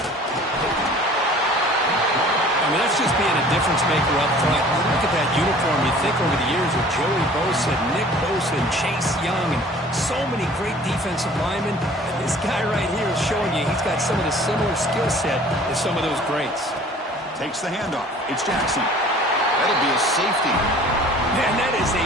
I mean, that's just being a difference maker up front. Look at that uniform. You think over the years with Joey Bosa, Nick Bosa, and Chase Young, and so many great defensive linemen. And this guy right here is showing you he's got some of the similar skill set as some of those greats. Takes the handoff. It's Jackson. That'll be a safety. Man, that is a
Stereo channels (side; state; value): both; normal; correlation 0.49